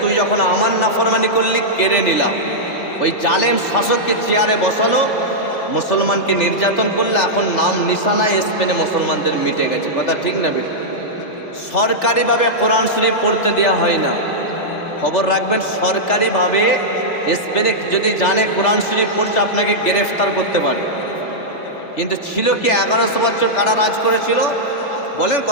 তুই যখন আমার নাফরমানি করলি, কেড়ে নিলাম। ওই জালেম শাসককে চেয়ারে বসালো, মুসলমানকে নির্যাতন করলে, এখন নাম নিশানায় স্পেনে মুসলমানদের মিটে গেছে। কথা ঠিক না বেঠিক? সরকারিভাবে কোরআন শরীফ পড়তে দেওয়া হয় না। খবর রাখবেন, সরকারিভাবে স্পেনে যদি জানে কোরআন শরীফ পড়ছে, আপনাকে গ্রেফতার করতে পারে। কিন্তু ছিল কি, 1100 বছর কারা রাজ করেছিল? বলেন,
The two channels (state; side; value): late; right; 3.4 ms